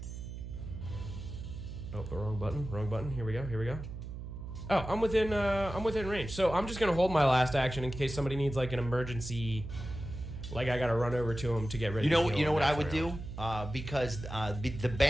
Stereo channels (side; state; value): right; noise; hum, 9 dB below the sound